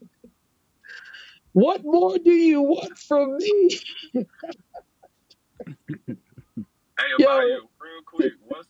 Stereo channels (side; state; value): both; identical; correlation 1.00